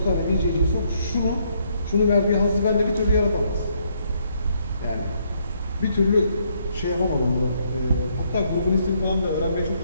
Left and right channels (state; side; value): inverted; both; correlation -0.71